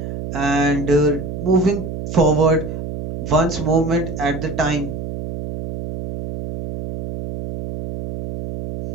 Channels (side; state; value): right; noise; hum, 7 dB below the sound